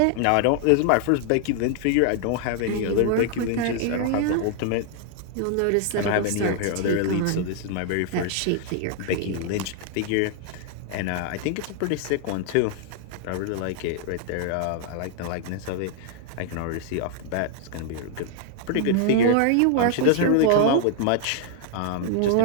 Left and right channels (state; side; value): different; both; correlation 0.00